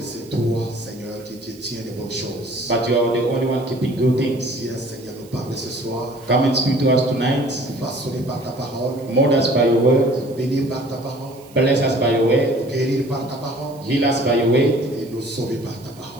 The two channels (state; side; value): noise; right; hiss, 25 dB below the sound